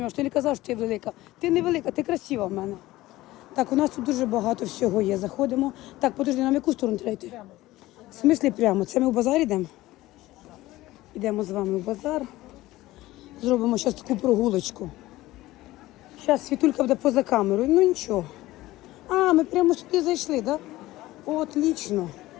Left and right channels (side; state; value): right; quieter; 17.3 dB